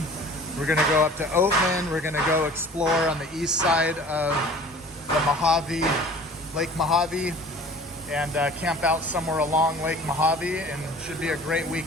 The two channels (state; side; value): normal; both; correlation 0.46